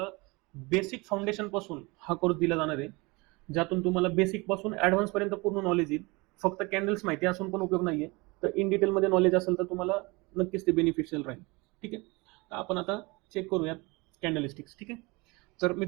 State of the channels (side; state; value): left; quieter; 25.7 dB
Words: बेसिक फाउंडेशनपासून हा कोर्स दिला जाणार आहे, ज्यातून तुम्हाला बेसिकपासून ॲडव्हान्सपर्यंत पूर्ण नॉलेज येईल. फक्त कॅन्डल्स माहिती असून पण उपयोग नाही आहे. तर इन डिटेलमध्ये नॉलेज असेल तर तुम्हाला नक्कीच ते बेनिफिशियल राहील. ठीक आहे. तर आपण आता चेक करूयात कॅन्डलस्टिक्स. ठीक आहे. तर